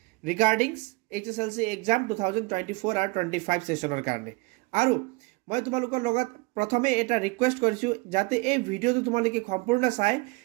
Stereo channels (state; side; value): quieter; left; 25.5 dB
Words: ৰিগাৰ্ডিং HSLC এক্সাম 2024 আৰু 25 সেশনৰ কাৰণে আৰু মই তোমালোকৰ লগত প্ৰথমে এটা ৰিকুৱেষ্ট কৰিছো যাতে এই ভিডিওটো তোমালোকে সম্পূৰ্ণ চাই